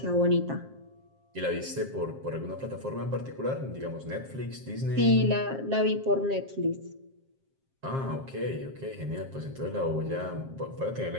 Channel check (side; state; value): left; late; 7.5 ms